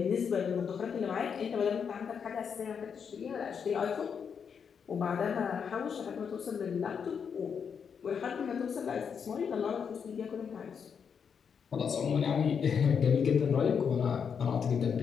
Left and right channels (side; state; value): right; quieter; 6.8 dB